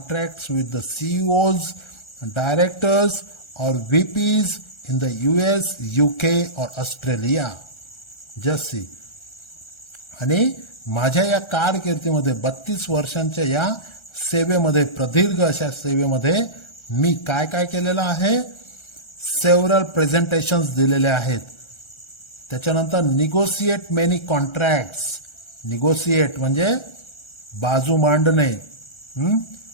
with the CEOs, directors और VPs in the US, UK or Australia. Just see. आणि माझ्या या कारकिर्दीमध्ये 32 वर्षांच्या या सेवेमध्ये, प्रदीर्घ अशा सेवेमध्ये मी काय काय केलेलं आहे, सेव्हरल प्रेझेंटेशन्स दिलेले आहेत. त्याच्यानंतर निगोशिएट मेनी कॉन्ट्रॅक्ट्स. निगोशिएट म्हणजे बाजू मांडणे.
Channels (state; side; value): late; right; 1.3 ms